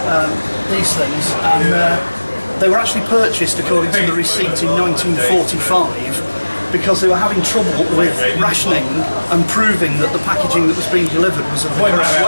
these things, and they were actually purchased, according to the receipt, in 1945 because they were having trouble with rationing and proving that the packaging that was being delivered was of the correct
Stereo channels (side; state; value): both; inverted; correlation -1.00